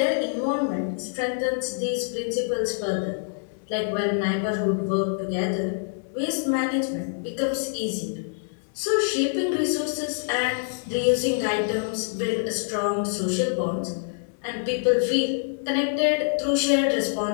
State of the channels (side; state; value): right; silent; digital silence